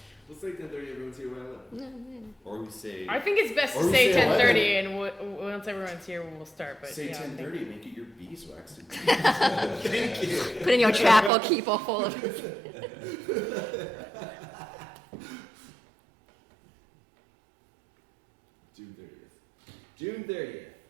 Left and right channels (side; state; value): left; drops out; at 11.3 s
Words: We'll say 10:30. Everyone's here by 11. Or we say I think it's best Or to we say say 10:30, and once everyone's here, we'll start. But say yeah, I think- 10:30. Make it your beeswax. Thank you. Put in your chapel, keep all full of. June 30th. June 30th.